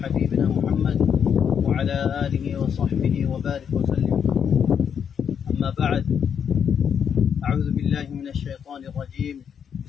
محمد وعلى آله وصحبه وبارك وسلم. أما بعد، أعوذ بالله من الشيطان الرجيم.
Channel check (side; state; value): right; quieter; 7.7 dB